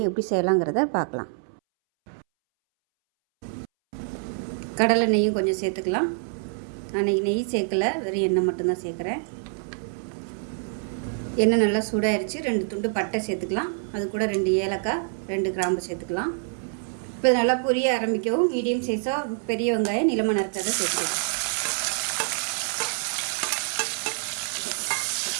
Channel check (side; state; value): left; silent; 61 dB below the other